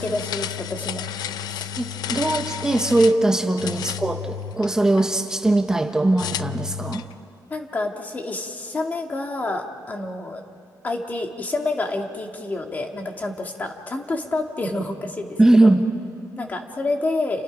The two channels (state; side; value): normal; both; correlation 0.87